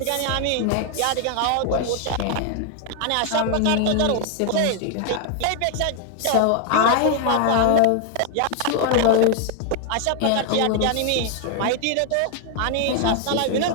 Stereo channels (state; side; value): different; both; correlation 0.00